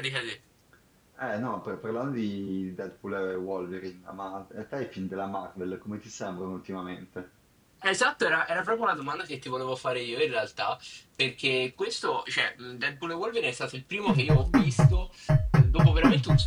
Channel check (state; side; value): identical; both; correlation 1.00